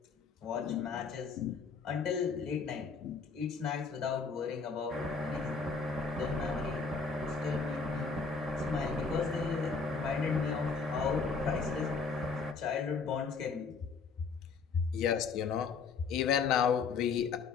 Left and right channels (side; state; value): right; quieter; 5.1 dB